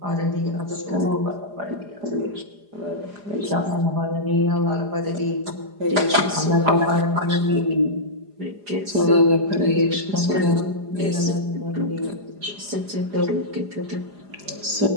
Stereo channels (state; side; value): late; left; 4.9 ms